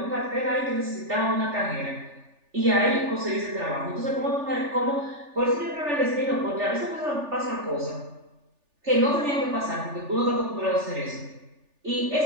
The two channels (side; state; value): left; late; 3.4 ms